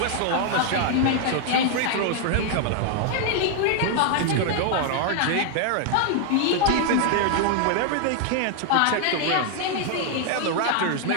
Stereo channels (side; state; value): both; different; correlation 0.00